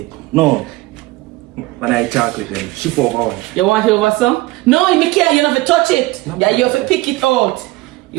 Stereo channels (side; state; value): left; quieter; 20.3 dB